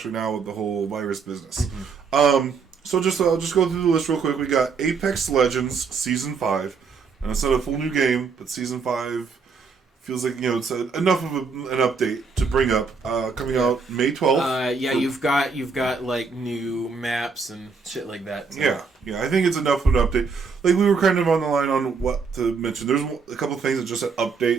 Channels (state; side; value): quieter; left; 5.1 dB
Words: now with the whole virus business. Mm-hmm. So I'll just go through the list real quick. We got Apex Legends Season 5. And it's not a full new game, but Season 5 feels like, it's enough of an update to bring up. Coming out May 12th. You've got new maps and shit like that. So. Yeah, I think it's enough of an update. We were kind of on the line on what to mention. There's a couple of things that just said